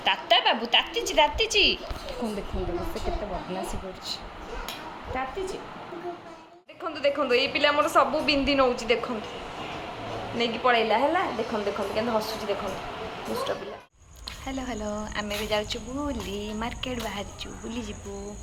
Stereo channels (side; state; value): both; identical; correlation 1.00